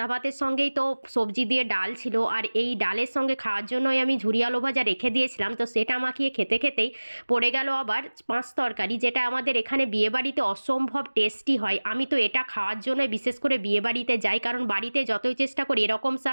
ভাতের সঙ্গেই তো সবজি দিয়ে ডাল ছিল, আর এই ডালের সঙ্গে খাওয়ার জন্যই আমি ঝুরি আলু ভাজা রেখে দিয়েছিলাম। তো সেটা মাখিয়ে খেতে খেতেই পড়ে গেল আবার পাঁচ তরকারি, যেটা আমাদের এখানে বিয়েবাড়িতে অসম্ভব টেস্টি হয়। আমি তো এটা খাওয়ার জন্য বিশেষ করে বিয়েবাড়িতে যাই, কারণ বাড়িতে যতই চেষ্টা করি এরকম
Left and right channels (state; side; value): inverted; both; correlation -1.00